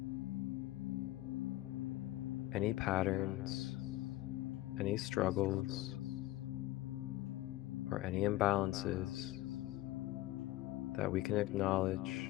any patterns, any struggles, or any imbalances that we can acknowledge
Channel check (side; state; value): right; quieter; 16.6 dB